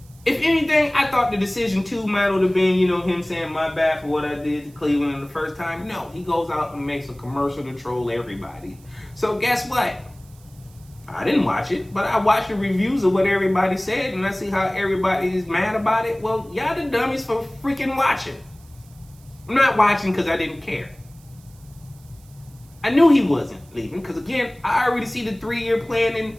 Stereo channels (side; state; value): right; noise; hiss, 28 dB below the sound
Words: if anything, I thought the decision 2 might have been, him saying my bad for what I did to Cleveland the first time. No, he goes out and makes a commercial to troll everybody. So guess what? I didn't watch it, but I watched the reviews of what everybody said, and I see how everybody is mad about it. Well, y'all the dummies for freaking watching. I'm not watching because I didn't care. I knew he wasn't leaving because, again, I already see the 3-year plan